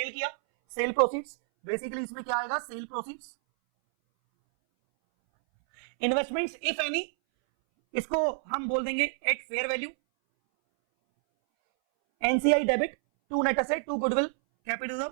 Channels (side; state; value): left; silent; 59 dB below the other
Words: किया, सेल प्रोसीड्स। बेसिकली इसमें क्या आएगा, sale proceeds. Investments if any, इसको हम बोल देंगे at fair value. NCI debit, to net asset, to goodwill, capital